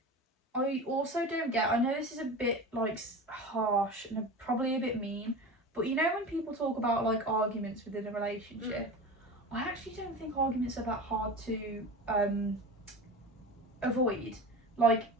I also don't get, I know this is a bit like harsh and probably a bit mean, but you know when people talk about like arguments within a relationship, I actually don't think arguments are that hard to avoid. Like,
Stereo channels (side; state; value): both; normal; correlation 0.31